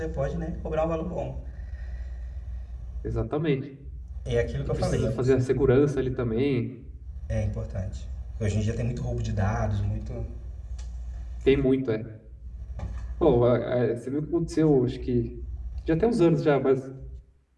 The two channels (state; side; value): identical; both; correlation 1.00